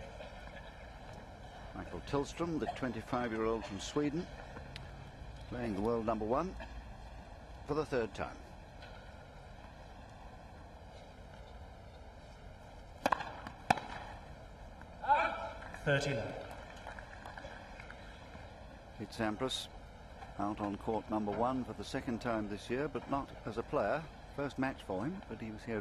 Mikael Tillstrom, the 25-year-old from Sweden, playing the world number 1 for the 3rd time. It's Sampras out on court number 1 for the 2nd time this year, but not as a player. First match for him, but he was here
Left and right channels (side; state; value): both; identical; correlation 1.00